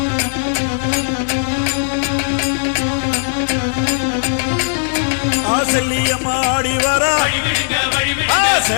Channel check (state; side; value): silent; right; 68 dB below the other